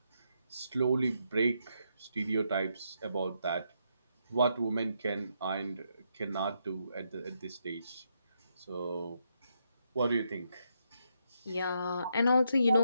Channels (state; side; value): inverted; both; correlation -0.79